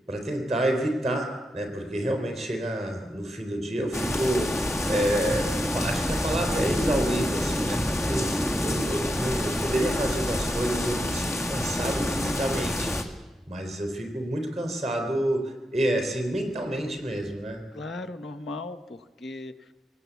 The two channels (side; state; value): both; normal; correlation 0.85